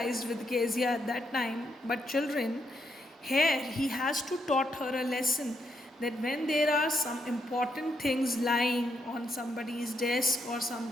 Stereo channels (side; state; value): both; normal; correlation 0.78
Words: with Kezia at that time, but children, here he has to taught her a lesson that when there are some important things lying on somebody's desk or